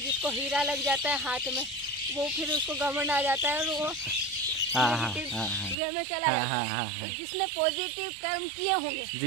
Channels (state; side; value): drops out; left; at 5.8 s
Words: हीरा लग जाता है हाथ में, वो फिर उसको घमंड आ जाता है और वो नेगेटिव वे में चला जाता है। तो जिसने पॉजिटिव कर्म किए होंगे